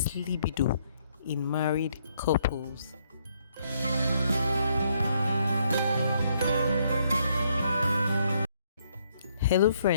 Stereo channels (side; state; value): both; inverted; correlation -0.71